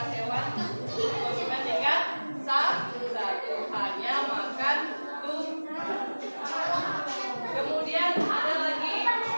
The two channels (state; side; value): inverted; both; correlation -1.00